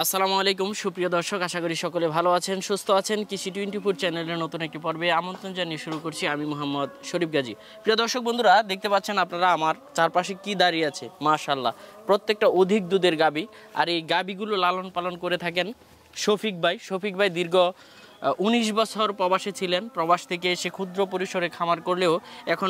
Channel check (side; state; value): both; identical; correlation 1.00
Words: আসসালামু আলাইকুম সুপ্রিয় দর্শক, আশা করি সকলে ভালো আছেন, সুস্থ আছেন। কৃষি 24 চ্যানেলের নতুন একটি পর্বে আমন্ত্রণ জানিয়ে শুরু করছি আমি মোহাম্মদ শরীফ গাজী। প্রিয় দর্শক বন্ধুরা, দেখতে পাচ্ছেন আপনারা আমার চারপাশে কি দাঁড়িয়ে আছে, মাশাআল্লাহ প্রত্যেকটা অধিক দুধের গাবি। আর এই গাবিগুলো লালন পালন করে থাকেন শফিক ভাই দীর্ঘ 19 বছর প্রবাসে ছিলেন। প্রবাস থেকে এসে ক্ষুদ্র পরিসরে খামার করলেও এখন